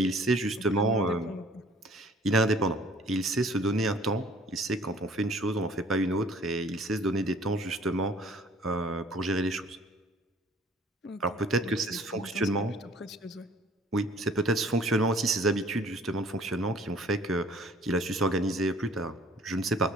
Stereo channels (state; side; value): normal; both; correlation 0.54